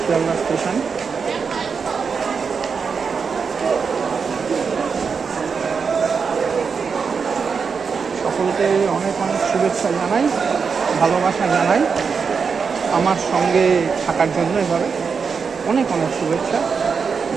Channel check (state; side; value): quieter; left; 5.7 dB